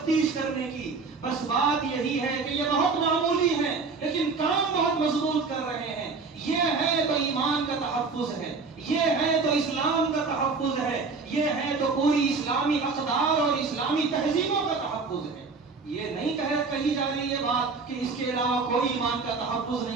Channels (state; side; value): quieter; left; 4.4 dB